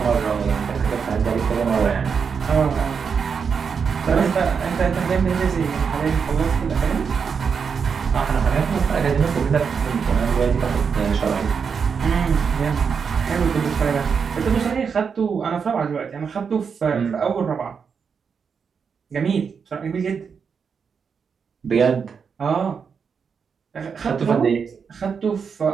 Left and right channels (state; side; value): quieter; left; 6.2 dB